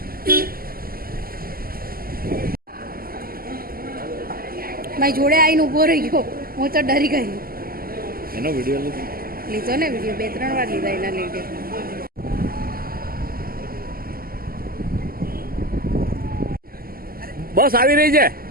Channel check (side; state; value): left; late; 0.42 ms